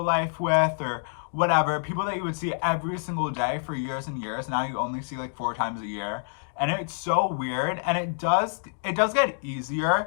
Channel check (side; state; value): right; silent; digital silence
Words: life with, or whatever. People that you would see every single day for years and years, now you only see like 4 times a year. And it's so weird, and it does get